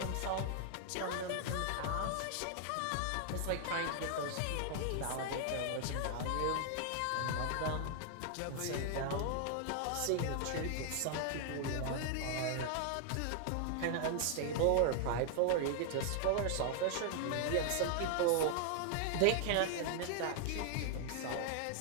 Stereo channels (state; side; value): different; both; correlation 0.00